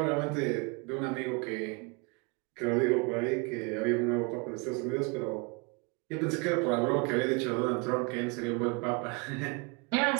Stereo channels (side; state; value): left; quieter; 30.5 dB